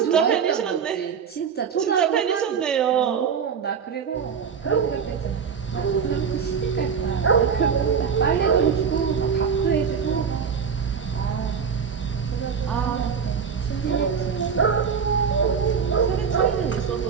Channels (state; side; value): quieter; left; 6.6 dB